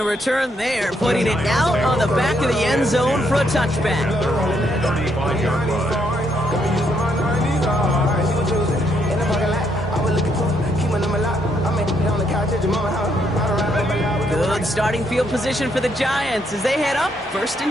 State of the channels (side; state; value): both; normal; correlation 0.74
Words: return there, putting it out on the back of the end zone for a touchback. Good starting field position for the Giants as they head up 1st